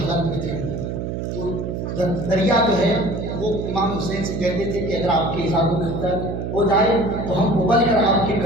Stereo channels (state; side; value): noise; right; hum, 4 dB below the sound